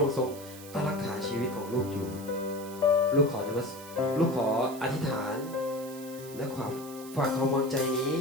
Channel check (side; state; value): right; noise; hiss, 16 dB below the sound